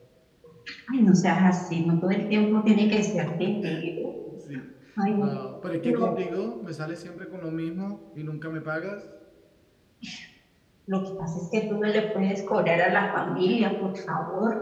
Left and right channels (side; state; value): both; identical; correlation 1.00